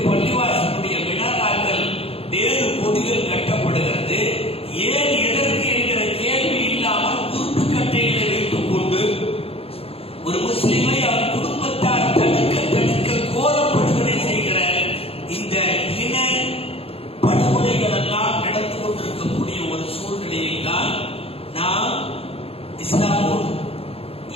பள்ளிவாசலுடைய மினாராக்கள் வேறு கொடிகள் கட்டப்படுகிறது. ஏன் எதற்கு என்கிற கேள்வி இல்லாமல் உருட்டுக்கட்டைகளை வைத்துக் கொண்டு ஒரு முஸ்லிமை அவன் குடும்பத்தார் தடுக்க கோரப்படுகளை செய்கிற இந்த இன படுகொலைகள் எல்லாம் நடந்து கொண்டிருக்கக்கூடிய ஒரு சூழ்நிலையில் தான் நாம் இஸ்லாமோடு,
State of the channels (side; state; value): right; late; 0.28 ms